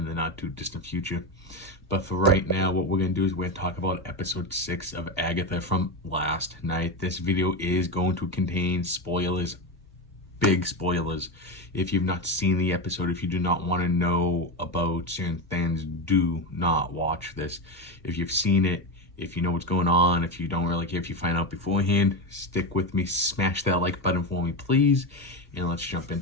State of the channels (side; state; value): both; normal; correlation 0.15